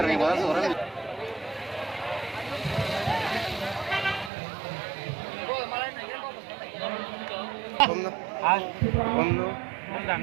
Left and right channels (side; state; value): left; drops out; at 4.3 s